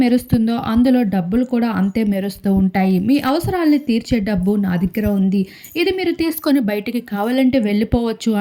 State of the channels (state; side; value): identical; both; correlation 1.00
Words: మెరుస్తుందో అందులో డబ్బులు కూడా అంతే మెరుస్తూ ఉంటాయి. మీ అవసరాల్ని తీర్చే డబ్బు నా దగ్గర ఉంది. ఇది మీరు తీసుకొని బయటికి కావాలంటే వెళ్ళిపోవచ్చు